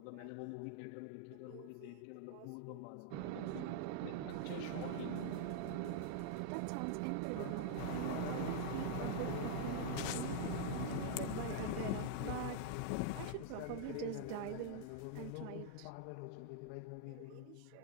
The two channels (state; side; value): different; both; correlation -0.01